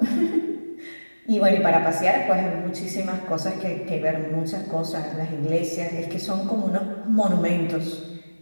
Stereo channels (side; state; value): both; inverted; correlation -1.00